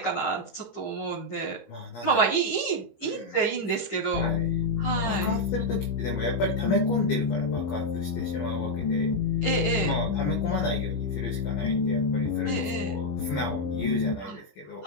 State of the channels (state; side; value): late; right; 15 ms